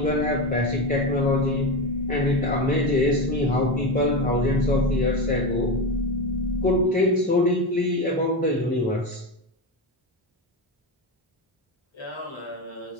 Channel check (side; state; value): both; normal; correlation 0.17